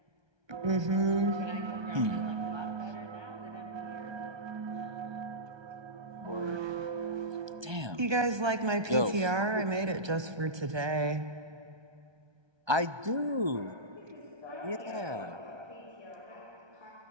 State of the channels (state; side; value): late; left; 1.2 ms